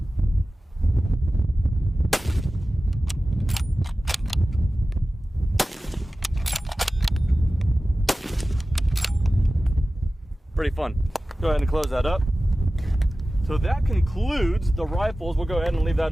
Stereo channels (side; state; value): both; normal; correlation 0.96